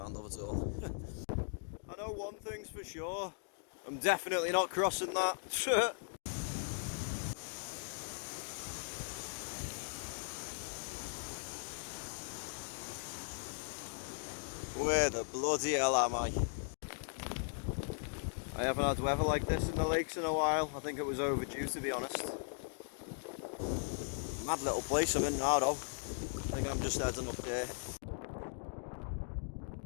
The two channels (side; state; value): right; silent; digital silence